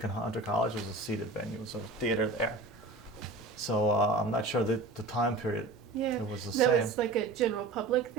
in Hunter College. It was a seated venue. It was a theater there. So I'm not sure the time period. Yeah. It was the That same. was like a general public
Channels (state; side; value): quieter; left; 3.2 dB